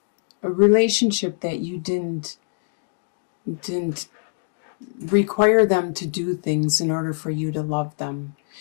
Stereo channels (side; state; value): right; silent; digital silence